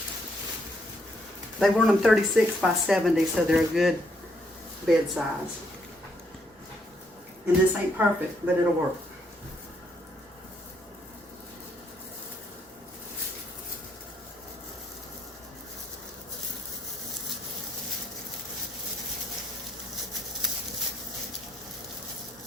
They want them 36 by 70, so they're a good bed size. And this ain't perfect, but it'll work.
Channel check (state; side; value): normal; both; correlation 0.73